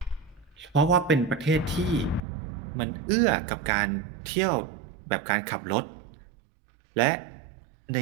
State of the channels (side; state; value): left; drops out; at 2.2 s